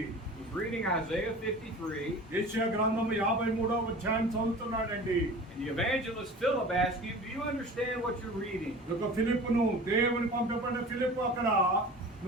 He's reading Isaiah 53. యెషయా గ్రంథము 53వ అధ్యాయం చదువుతున్నాడండి. And the evangelist Philip asked him, do you understand what you're reading? ఒక ఫిలిప్పును దేవుని పంపబడిన ఫిలిప్పు అక్కడ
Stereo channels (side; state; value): both; normal; correlation 0.39